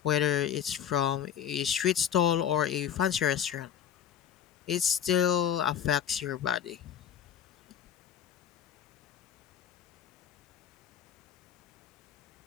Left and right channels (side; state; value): right; quieter; 9.1 dB